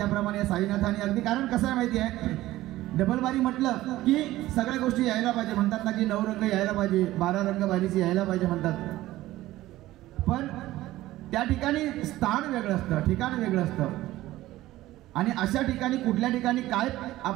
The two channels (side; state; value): left; quieter; 16.1 dB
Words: साईनाथांनी अगदी कारण कसं आहे माहिती आहे डबलवारी म्हटलं की सगळ्या गोष्टी यायला पाहिजे म्हणतात ना की 9 रंग यायला पाहिजे 12 रंग बारीची यायला पाहिजे म्हणतात पण त्या ठिकाणी स्थान वेगळं असतं ठिकाण वेगळं असतं आणि अशा ठिकाणी कुठल्या ठिकाणी काय